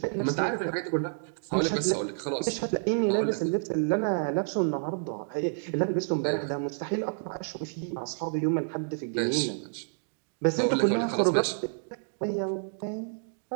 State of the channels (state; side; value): silent; left; digital silence